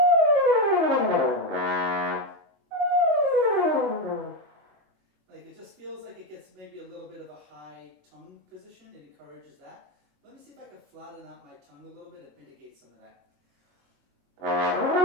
Like it just feels like it gets maybe a little bit of a high tongue position. It encourages that. Let me see if I can flatten out my tongue a little bit and mitigate some of that.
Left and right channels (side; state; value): left; late; 21 ms